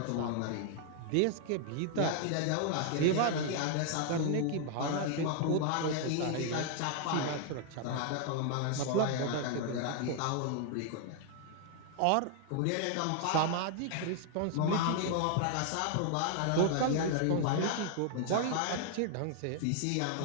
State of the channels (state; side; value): different; both; correlation 0.00